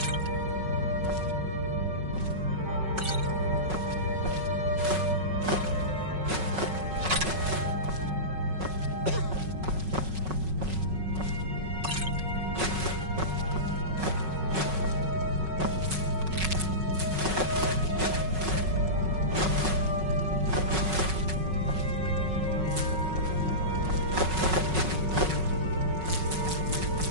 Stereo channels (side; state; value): left; late; 5.4 ms